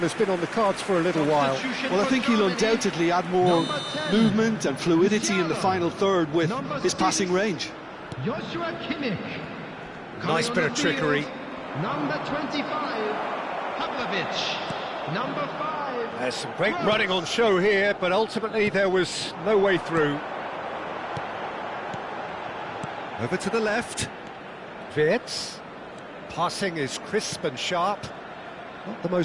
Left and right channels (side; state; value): both; identical; correlation 1.00